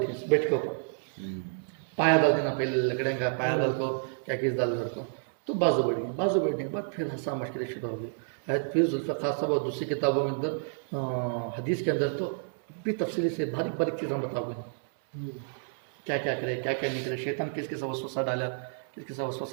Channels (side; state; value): left; silent; 58 dB below the other